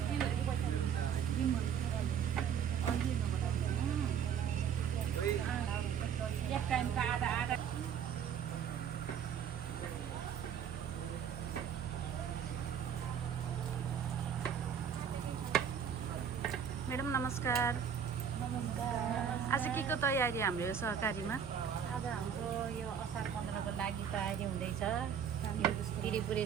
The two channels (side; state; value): left; quieter; 8.0 dB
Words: मैडम नमस्कार। आज के को तयारी हाम्रो यो सहकारीमा? आज हाम्रो यो असार 15 को लागि तयारी हुँदैछ। यो